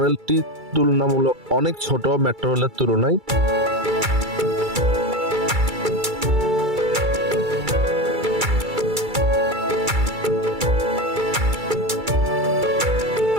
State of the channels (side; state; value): left; late; 2.3 ms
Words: তুলনামূলক অনেক ছোট মেট্রো রেলের তুলনায়।